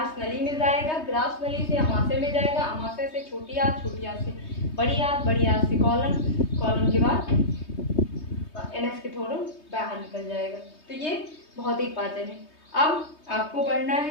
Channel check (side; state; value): right; late; 3.2 ms